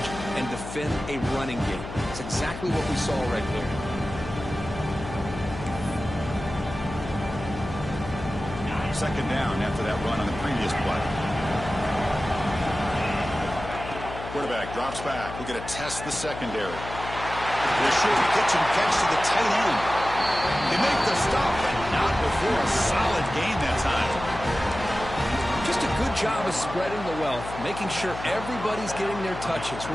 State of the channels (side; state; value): left; noise; hum, 10 dB below the sound